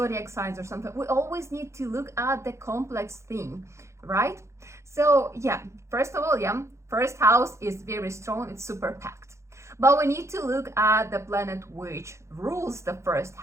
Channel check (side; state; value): left; late; 0.14 ms